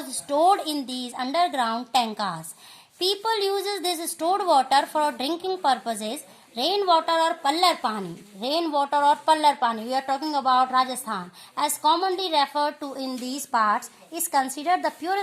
stored in these underground tankas. People uses this stored water for drinking purposes. Rainwater or pallar pani. Rainwater or pallar pani. We are talking about Rajasthan. As commonly referred to in these parts, is considered the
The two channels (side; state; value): both; identical; correlation 1.00